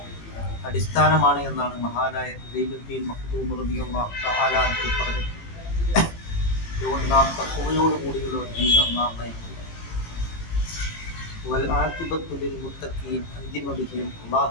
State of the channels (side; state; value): right; late; 18 ms